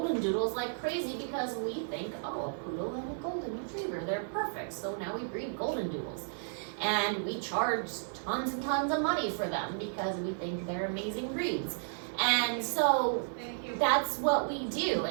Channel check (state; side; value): silent; left; 56 dB below the other